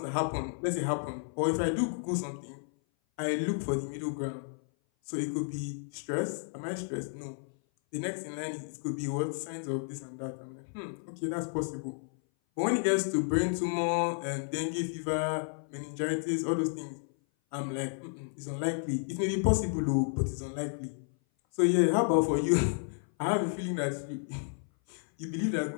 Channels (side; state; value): right; silent; 56 dB below the other